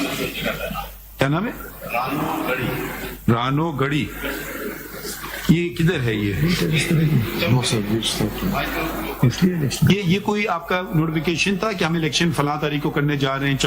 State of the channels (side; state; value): both; identical; correlation 1.00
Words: کیا نام ہے؟ رانو گڑی. یہ کدھر ہے؟ یہ کوئی آپ کا نوٹیفیکیشن تھا کہ ہم الیکشن فلاں تاریخ کو کرنے جا رہے ہیں